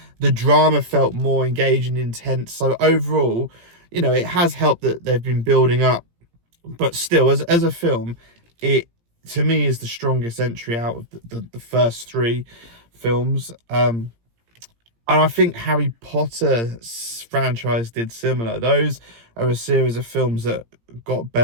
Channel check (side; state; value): left; late; 17 ms